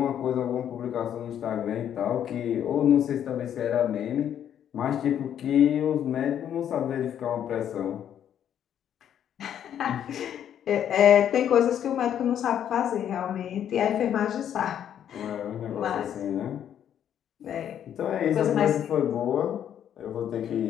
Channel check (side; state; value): right; quieter; 9.7 dB